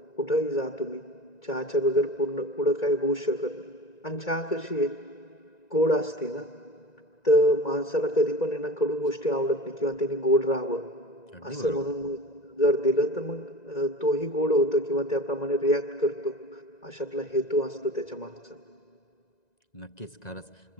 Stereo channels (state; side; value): late; right; 1.9 ms